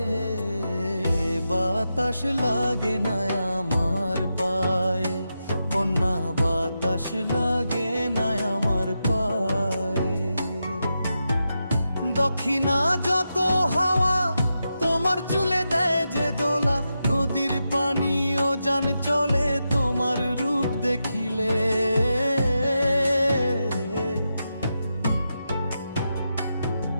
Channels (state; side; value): inverted; both; correlation -0.88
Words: বাতাস লাগে না আমার পায়ে, কন্যা বাতাস লাগে না আমার পায়ে। দক্ষিণা যত হাওয়া তোমার চুলে দেয় যে দোলা, নদীর পানি ও জান চলে তোমার রূপ দেখিলে।